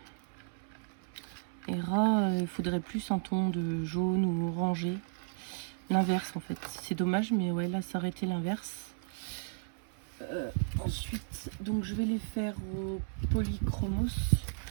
Hera, il faudrait plus un ton de jaune ou orangé. L'inverse en fait. C'est dommage, mais ouais, là, ça aurait été l'inverse. Ensuite, donc je vais les faire au polychromos.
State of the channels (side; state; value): left; silent; 55 dB below the other